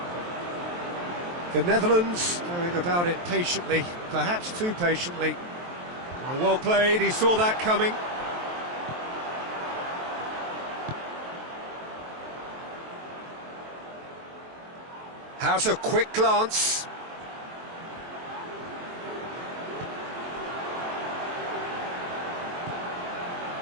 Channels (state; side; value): late; left; 23 ms